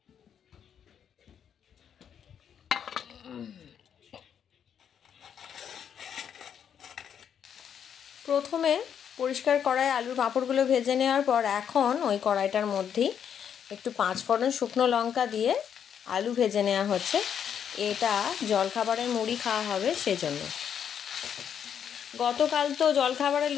প্রথমে পরিষ্কার কড়াই আলুর পাঁপড়গুলো ভেজে নেওয়ার পর এখন ওই কড়াইটার মধ্যেই একটু 5 ফোড়ন শুকনো লঙ্কা দিয়ে আলু ভেজে নেওয়া হচ্ছে। এটা জলখাবারের মুড়ি খাওয়া হবে সেজন্য। গতকাল তো জলখাবারে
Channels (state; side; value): quieter; right; 8.4 dB